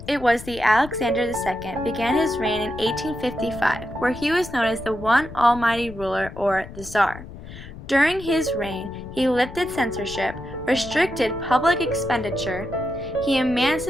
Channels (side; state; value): left; noise; rumble, 14 dB below the sound